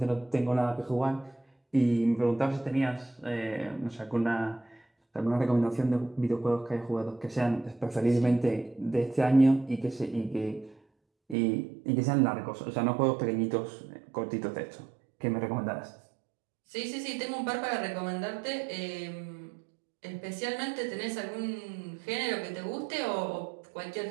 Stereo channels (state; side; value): drops out; left; at 11.4 s